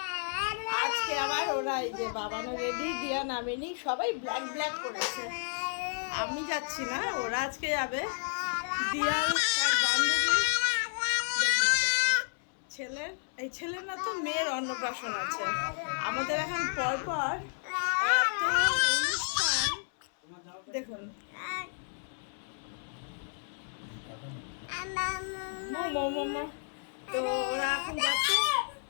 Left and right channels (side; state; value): right; silent; 57 dB below the other